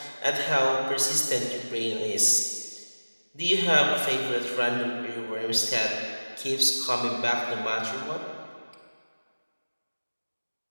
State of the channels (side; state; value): both; inverted; correlation -1.00